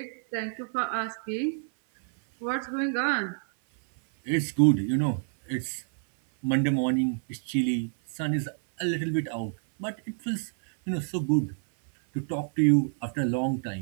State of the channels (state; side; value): silent; left; 59 dB below the other